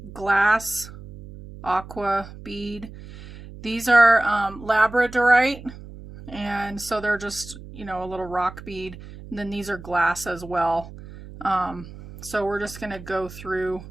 glass aqua bead. These are labradorite, and so they're just, you know, a little rock bead. And then these are glass as well. So we're just going to go through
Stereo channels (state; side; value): noise; right; hum, 15 dB below the sound